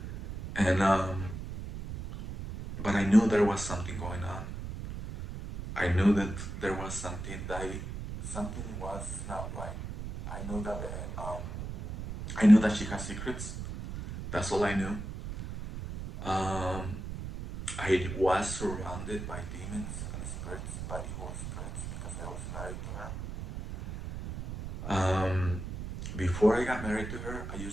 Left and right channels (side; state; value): right; noise; rumble, 7 dB below the sound